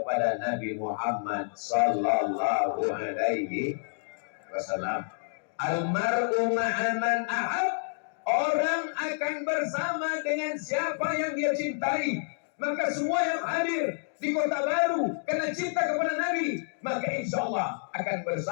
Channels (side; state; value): right; silent; digital silence